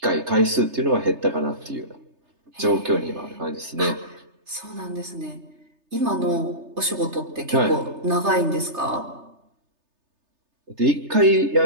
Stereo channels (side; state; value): left; late; 3.3 ms